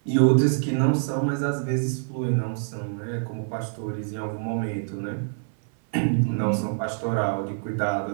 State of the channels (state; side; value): silent; left; 61 dB below the other